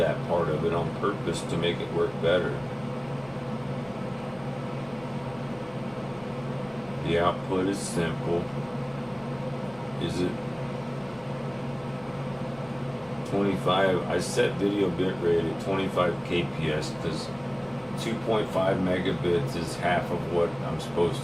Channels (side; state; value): right; noise; rumble, 24 dB below the sound